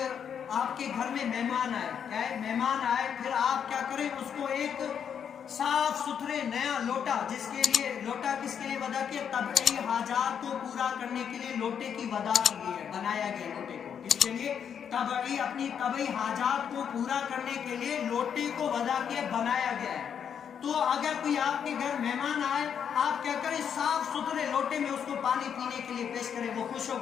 آپ کے گھر میں مہمان آئے, کیا ہے, مہمان آئے, پھر آپ کیا کریں, اس کو ایک صاف ستھرے نیا لوٹا, جس کے لیے لوٹا کس کے لیے وضع کیا, طبعی حاجات کو پورا کرنے کے لیے لوٹے کی وضع کی گئی ہے, بنایا گیا لوٹے کو. اس کے لیے اپنی طبعی حاجات کو پورا کرنے کے لیے لوٹے کو وضع کیا, بنایا گیا ہے. تو اگر کوئی آپ کے گھر مہمان آئے, آپ کیا کریں, صاف ستھرے لوٹے میں اس کو پانی پینے کے لیے پیش کریں, وہ خوش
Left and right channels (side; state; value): right; quieter; 7.9 dB